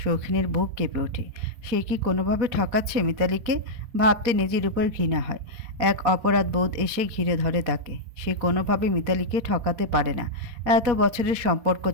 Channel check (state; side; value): late; left; 4.2 ms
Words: শৌখিনের বুক কেঁপে ওঠে। সে কি কোনোভাবে ঠকাচ্ছে মিতালিকে? ভাবতে নিজের উপর ঘৃণা হয়। এক অপরাধ বোধ এসে ঘিরে ধরে তাকে। সে কোনোভাবে মিতালিকে ঠকাতে পারে না। এত বছরের সম্পর্ক